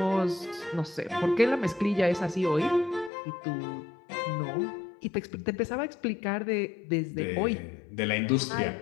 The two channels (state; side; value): drops out; right; at 3.1 s